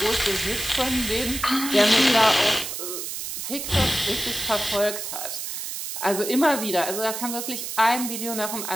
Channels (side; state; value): right; noise; hiss, 6 dB below the sound